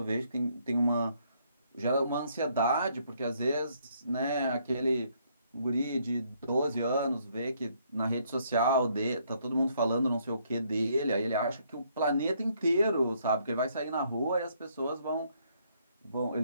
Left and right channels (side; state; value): both; inverted; correlation -0.69